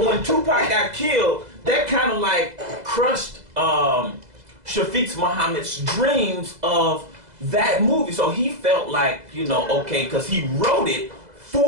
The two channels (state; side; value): late; left; 2.0 ms